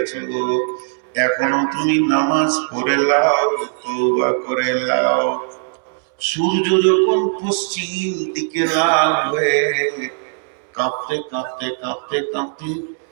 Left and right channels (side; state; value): left; silent; 66 dB below the other